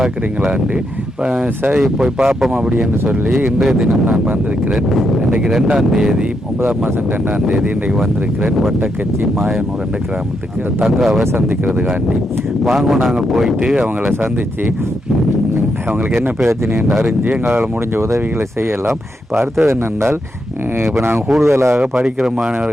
இப்போ சரி போய் பார்ப்போம் அப்படின்னு சொல்லி இன்றைய தினம் நான் வந்திருக்கிறேன். இன்றைக்கு 2ஆம் தேதி 9ஆம் மாதம் 2ஆம் தேதி இன்றைக்கு வந்திருக்கிறேன் வட்டக்கச்சி மாயனூர் என்ற கிராமத்துக்கு தங்காவை சந்திக்கிறதுக்காண்டி. வாங்க நாங்கள் போயிட்டு அவங்கள சந்தித்து அவங்களுக்கு என்ன பிரச்சனை என்று அறிஞ்சு எங்களால் முடிஞ்ச உதவிகளை செய்யலாம். இப்போ அடுத்தது என்னென்றால், இப்போ நாங்கள் கூடுதலாக படிக்கிற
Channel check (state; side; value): normal; both; correlation 0.81